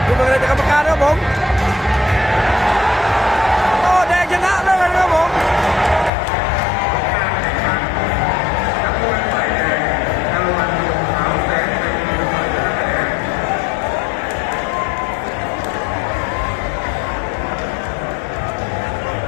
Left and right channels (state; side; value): drops out; right; at 6.1 s